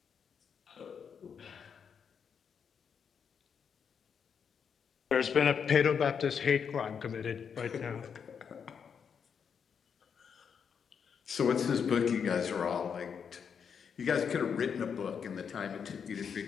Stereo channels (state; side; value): quieter; right; 6.9 dB